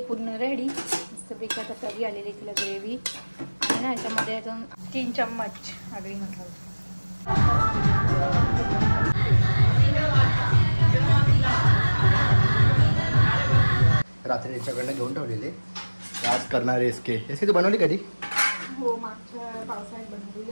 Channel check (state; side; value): inverted; both; correlation -1.00